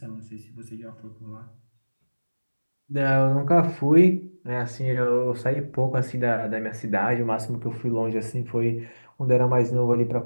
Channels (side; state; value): both; inverted; correlation -1.00